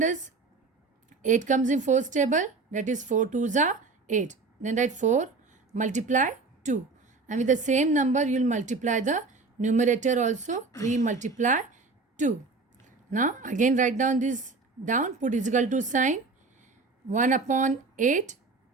8 comes in 4's table? That is 4 2s are 8. Then write 4 multiply 2. And with the same number, you will multiply the numerator also. 3 multiply 2. Now, again write down this down. Put is equal to sign. 1 upon 8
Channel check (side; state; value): left; quieter; 4.0 dB